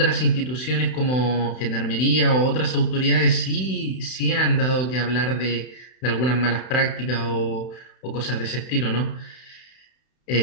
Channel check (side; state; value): right; late; 31 ms